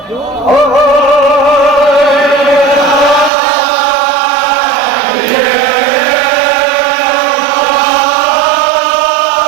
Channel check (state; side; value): drops out; left; at 3.3 s